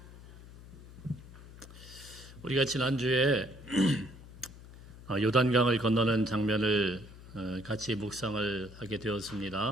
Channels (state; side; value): noise; left; hum, 18 dB below the sound